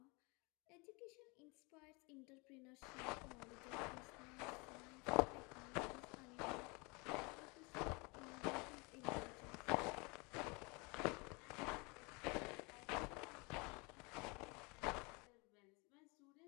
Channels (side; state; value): right; quieter; 29.0 dB